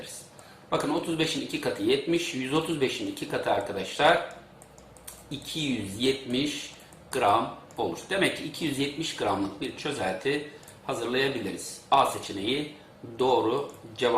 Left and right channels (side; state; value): both; identical; correlation 1.00